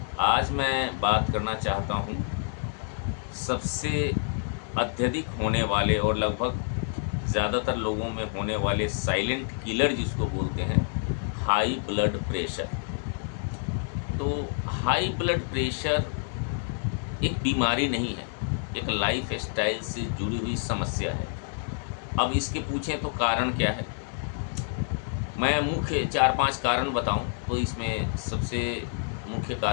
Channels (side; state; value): right; silent; digital silence